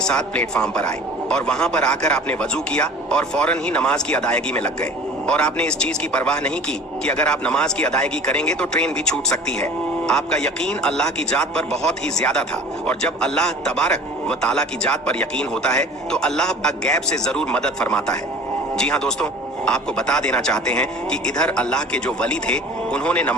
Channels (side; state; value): both; normal; correlation 0.42